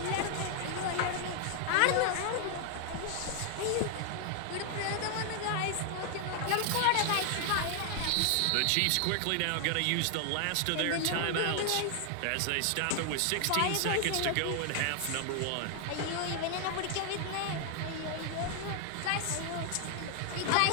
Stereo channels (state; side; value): different; both; correlation 0.00